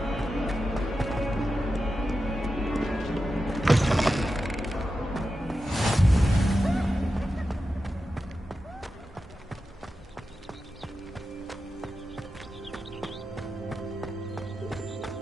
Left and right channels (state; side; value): normal; both; correlation 0.91